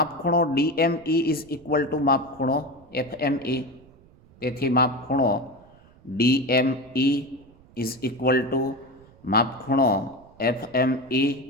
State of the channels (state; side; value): noise; right; rumble, 26 dB below the sound